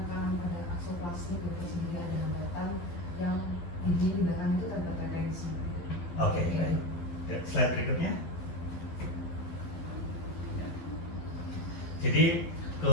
pada aksoplastik itu sehingga ada hambatan yang di belakang itu terdapat retensi. Oke, baik. Slide berikutnya. Jadi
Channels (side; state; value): right; late; 12 ms